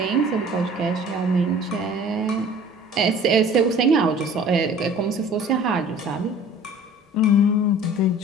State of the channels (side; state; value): both; normal; correlation 0.48